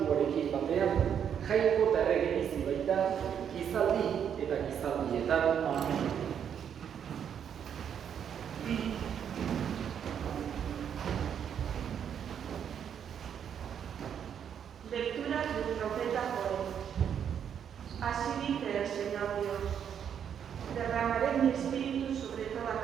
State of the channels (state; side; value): quieter; left; 8.4 dB